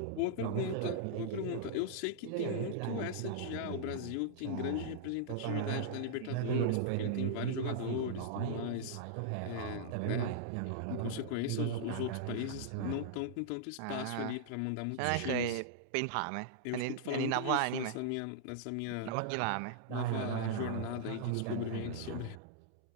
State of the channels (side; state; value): both; different; correlation -0.01